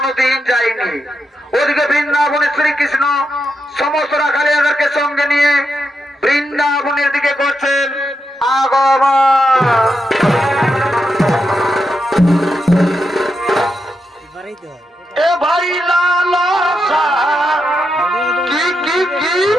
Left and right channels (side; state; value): both; normal; correlation 0.85